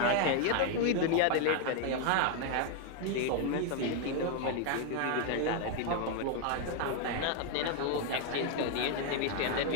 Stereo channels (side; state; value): both; different; correlation 0.01